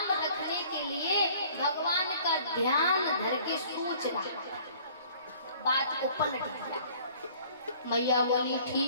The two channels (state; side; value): inverted; both; correlation -0.53